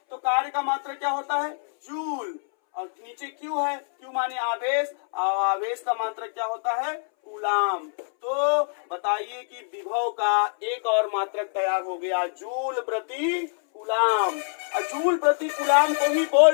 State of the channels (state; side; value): silent; right; 62 dB below the other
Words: तो कार्य का मात्रक क्या होता है? जूल। और नीचे क्यू है, क्यू माने आवेश, और आवेश का मात्रक क्या होता है? कूलाम। तो बताइए कि विभव का एक और मात्रक तैयार हो गया, जूल प्रति कूलाम। और जूल प्रति कूलाम को ही